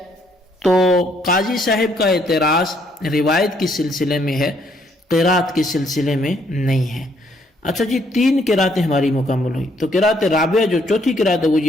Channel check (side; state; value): both; normal; correlation 0.69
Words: تو قاضی صاحب کا اعتراض روایت کے سلسلے میں ہے، قرات کے سلسلے میں نہیں ہے۔ اچھا جی، 3 قراتیں ہماری مکمل ہوئی، تو قرات رابعہ جو چوتھی قرات ہے وہ